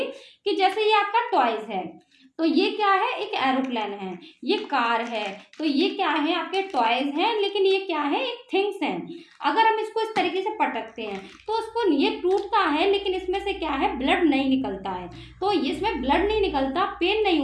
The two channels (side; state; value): both; identical; correlation 1.00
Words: कि जैसे ये आपका टॉयज है, तो ये क्या है, एक एरोप्लेन है। ये कार है, तो ये क्या है, आपके टॉयज हैं, लेकिन ये क्या है, एक थिंग्स हैं। अगर हम इसको इस तरीके से पटकते हैं तो उसको ये टूटता है, लेकिन इसमें से क्या है, ब्लड नहीं निकलता है। तो इसमें ब्लड नहीं निकलता, पेन नहीं